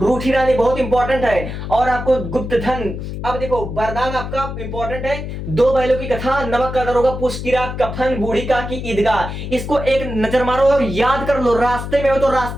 रूठी रानी बहुत इंपॉर्टेंट है। और आपको गुप्त धन। अब देखो वरदान आपका इंपॉर्टेंट है, दो बैलों की कथा, नमक का दरोगा, पुष्ट की रात, कफन, बूढ़ी का की ईदगाह। इसको एक नजर मारो और याद कर लो, रास्ते में हो तो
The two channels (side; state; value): left; noise; hum, 7 dB below the sound